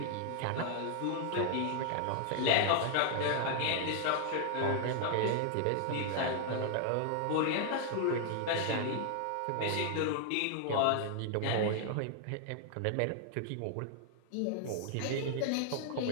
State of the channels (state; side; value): different; both; correlation 0.00